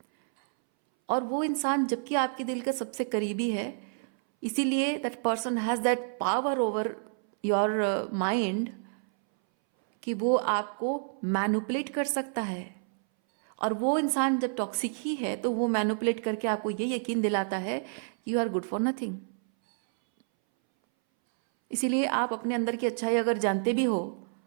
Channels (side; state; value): left; silent; 59 dB below the other